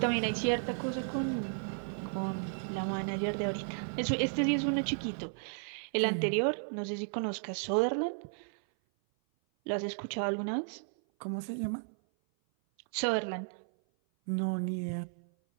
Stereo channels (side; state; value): left; silent; 55 dB below the other